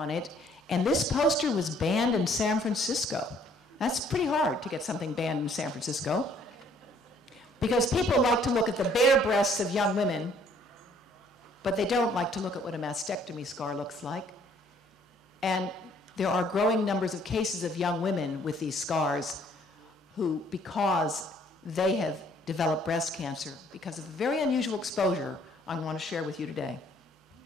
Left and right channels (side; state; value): both; normal; correlation 0.61